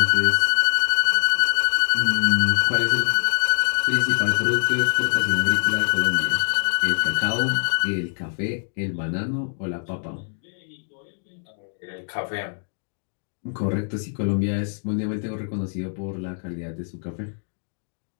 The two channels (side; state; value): right; silent; digital silence